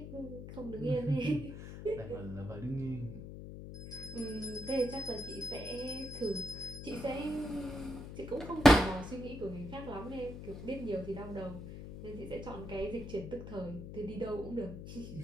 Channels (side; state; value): left; noise; hum, 10 dB below the sound